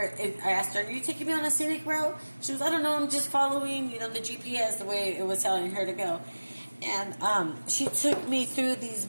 I asked her, "Are you taking me on a scenic route?" She was, "I don't know, I'm just following, the GPS the way it was telling her to go." And she took me through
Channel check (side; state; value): both; inverted; correlation -1.00